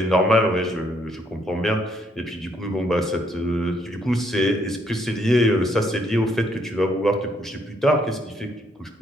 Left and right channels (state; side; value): normal; both; correlation 0.70